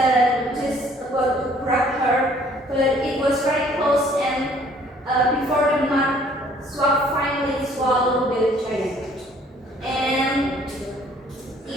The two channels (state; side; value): normal; both; correlation 0.58